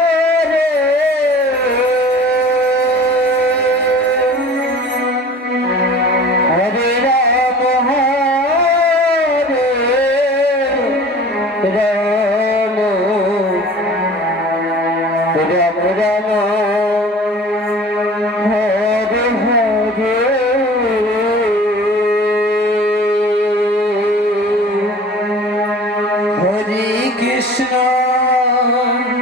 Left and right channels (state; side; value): normal; both; correlation 0.44